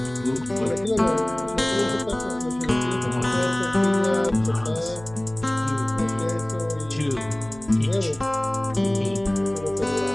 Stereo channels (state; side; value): noise; right; hum, 19 dB below the sound